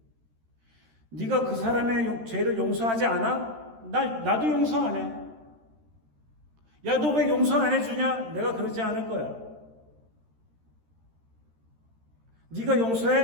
네가 그 사람의 죄를 용서하지 않아? 나도 용서 안 해. 야, 너 왜 용서 안 해주냐? 내가 그러지 않을 거야. 네가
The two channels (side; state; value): left; late; 13 ms